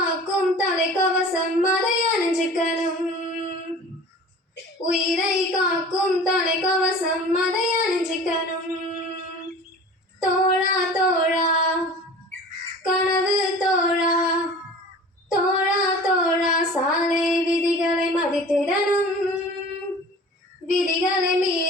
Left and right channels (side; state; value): both; normal; correlation 0.42